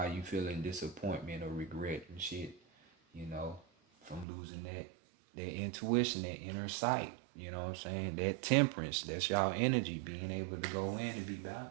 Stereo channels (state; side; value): drops out; left; at 4.2 s